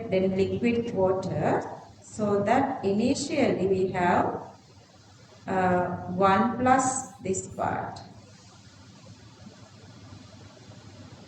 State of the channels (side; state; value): both; identical; correlation 1.00